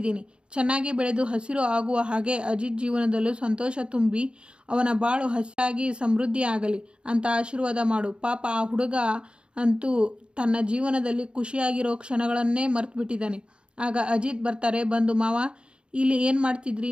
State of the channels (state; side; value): late; left; 0.055 ms